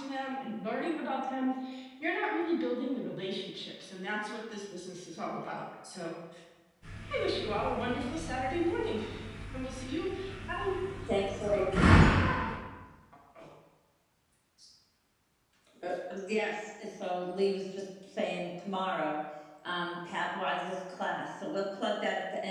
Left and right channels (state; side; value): identical; both; correlation 1.00